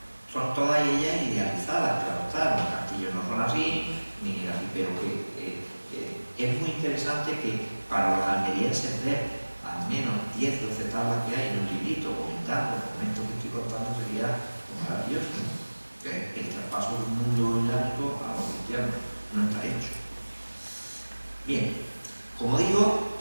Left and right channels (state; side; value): inverted; both; correlation -1.00